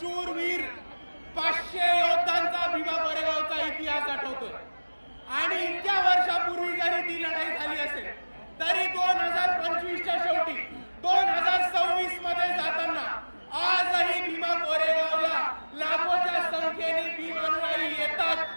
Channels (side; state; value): both; inverted; correlation -1.00